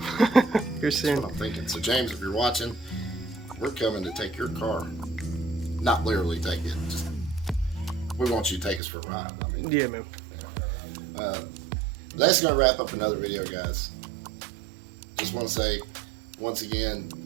here soon. That's what I'm thinking. So, James, if you're watching, we're coming to take your car. Not literally take it. Just, we want you to take us for a ride. I mean, Yeah, man. that's going to wrap up another video, guys. Just want to say, once again,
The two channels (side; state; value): left; drops out; at 8.8 s